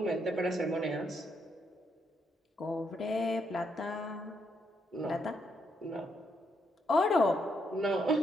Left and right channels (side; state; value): both; normal; correlation 0.77